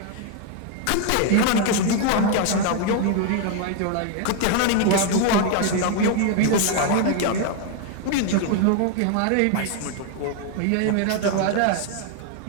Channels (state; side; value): different; both; correlation 0.01